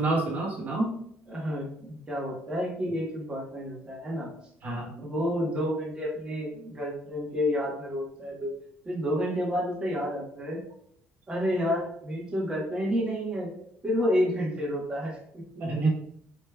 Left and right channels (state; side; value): normal; both; correlation 0.69